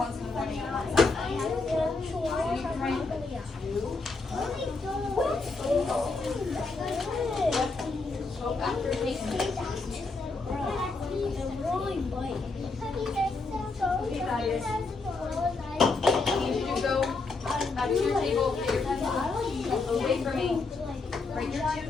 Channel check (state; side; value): quieter; right; 3.9 dB